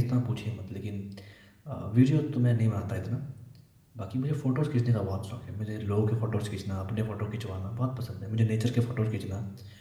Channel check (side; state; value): both; identical; correlation 1.00